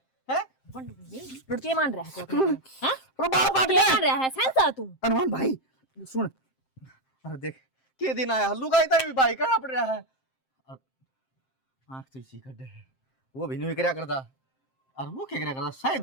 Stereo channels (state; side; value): late; right; 7.6 ms